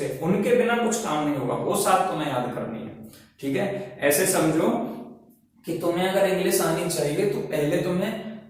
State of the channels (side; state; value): both; identical; correlation 1.00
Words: पे, उनके बिना कुछ काम नहीं होगा, वो सात तुम्हें याद करनी है। ठीक है, ऐसे समझो कि तुम्हें अगर इंग्लिश आनी चाहिए तो पहले तुम्हें